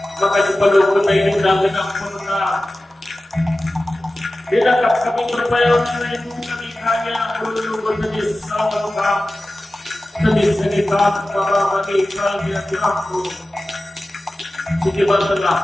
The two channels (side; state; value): both; normal; correlation 0.96